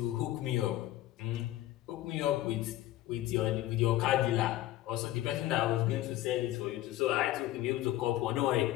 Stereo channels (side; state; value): right; quieter; 14.9 dB